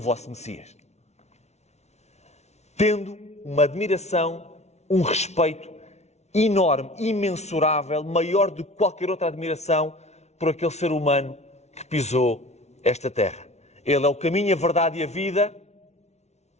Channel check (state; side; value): late; right; 0.32 ms